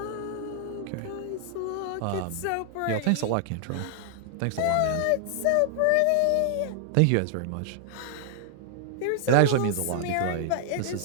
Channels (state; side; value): different; both; correlation 0.00